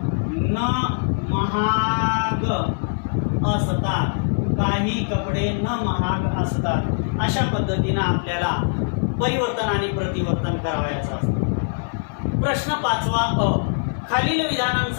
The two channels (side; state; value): right; silent; digital silence